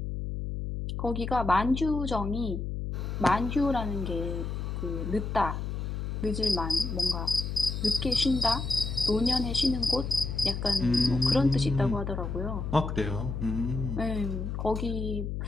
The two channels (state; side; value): noise; left; hum, 4 dB below the sound